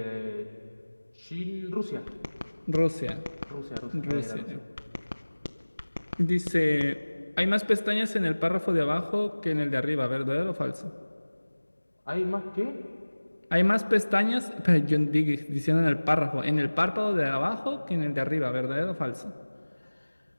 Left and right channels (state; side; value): inverted; both; correlation -1.00